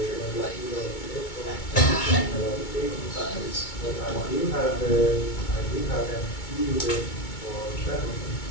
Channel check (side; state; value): right; late; 2.2 ms